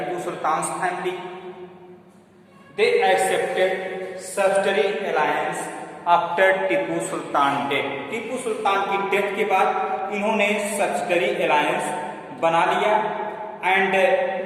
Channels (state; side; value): identical; both; correlation 1.00